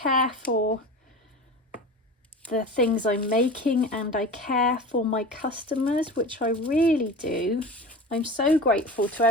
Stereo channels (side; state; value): both; normal; correlation 0.32